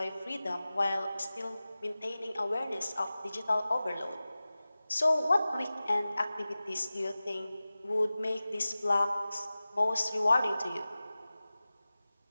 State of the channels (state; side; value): inverted; both; correlation -0.97